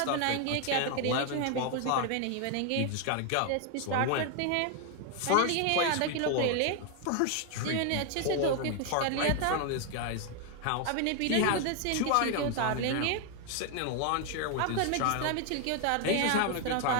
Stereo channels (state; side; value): different; both; correlation 0.01